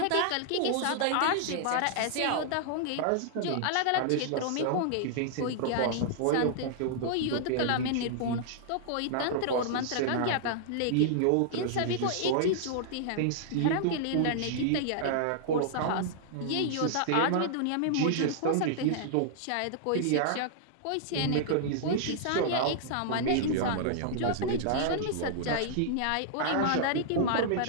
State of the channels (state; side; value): different; both; correlation -0.01